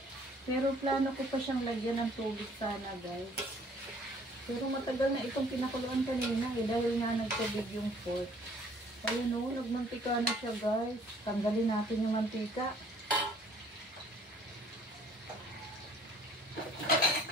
Pero plano ko pa siyang lagyan ng tubig sana guys. Pero matagal na itong pinakuluan kanina dahil nga nagtubig yung pork. Ayun o, nagmantika na siya guys. Tanggalin natin yung mantika.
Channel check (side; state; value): both; normal; correlation 0.57